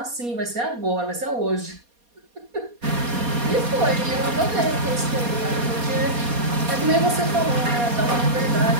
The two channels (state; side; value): late; left; 4.2 ms